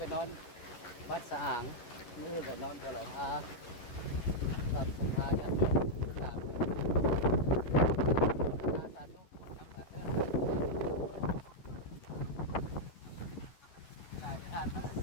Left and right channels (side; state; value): right; late; 11 ms